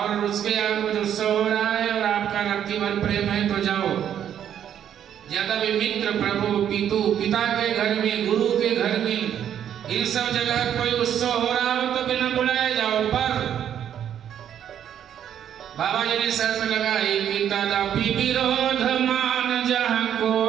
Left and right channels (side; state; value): left; quieter; 9.7 dB